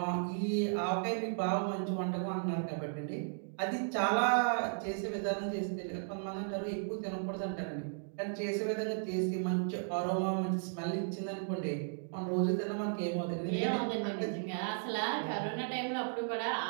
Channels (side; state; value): left; silent; digital silence